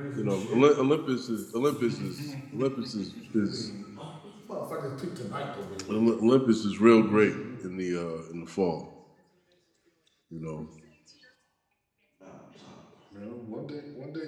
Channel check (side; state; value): both; identical; correlation 1.00